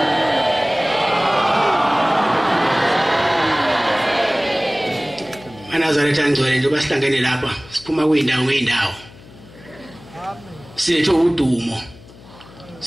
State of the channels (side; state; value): left; noise; hum, 21 dB below the sound